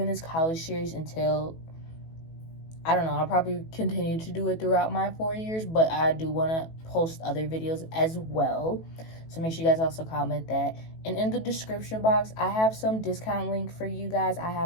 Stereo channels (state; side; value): late; right; 18 ms